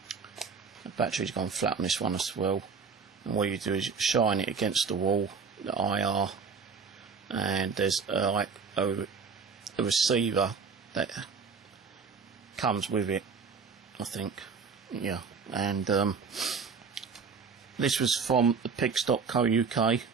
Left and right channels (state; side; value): quieter; left; 5.4 dB